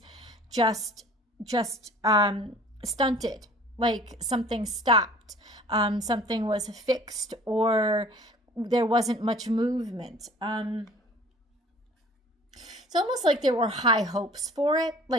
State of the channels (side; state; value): both; normal; correlation 0.49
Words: just stunted. Like, something stopped, something was fixed, or there wasn't much movement. It's almost like there were high hopes for it.